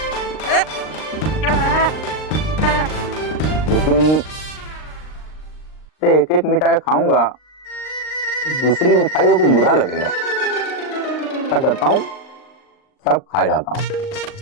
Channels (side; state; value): right; late; 39 ms